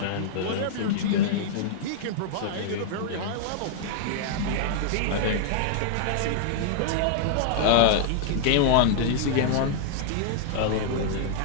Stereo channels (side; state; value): both; different; correlation -0.01